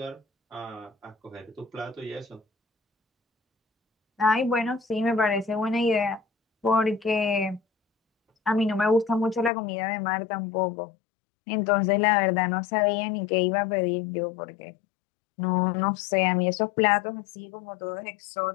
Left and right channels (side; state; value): right; drops out; at 9.5 s